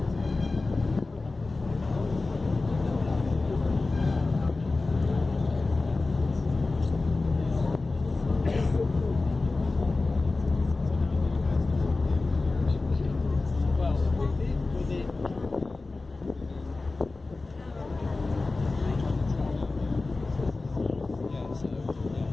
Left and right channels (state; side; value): quieter; right; 3.5 dB